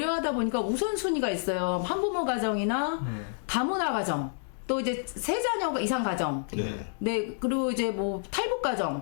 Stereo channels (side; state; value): right; silent; digital silence